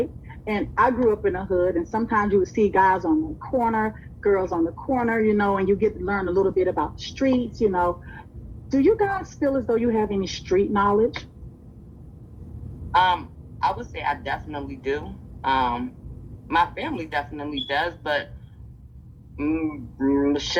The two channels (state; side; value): identical; both; correlation 1.00